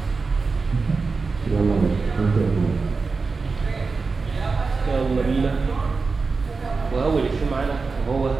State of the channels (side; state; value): left; quieter; 4.4 dB